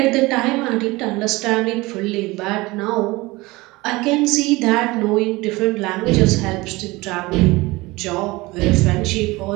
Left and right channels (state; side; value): quieter; left; 21.6 dB